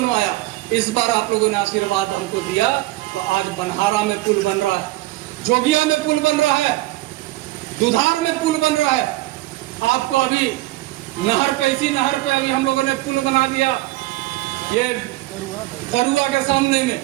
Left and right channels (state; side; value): quieter; left; 18.4 dB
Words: इस बार आप लोगों ने आशीर्वाद हमको दिया तो आज बनहारा में पुल बन रहा है, जोगिया में पुल बन रहा है, दुधार में पुल बन रहा है। आपको अभी नहर पे, इसी नहर पे अभी हम लोगों ने पुल बना दिया ये करुआ के सामने में।